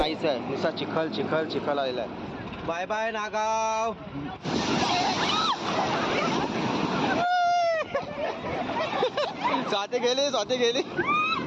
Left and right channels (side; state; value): both; identical; correlation 1.00